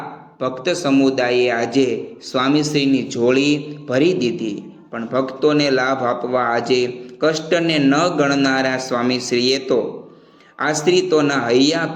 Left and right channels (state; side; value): identical; both; correlation 1.00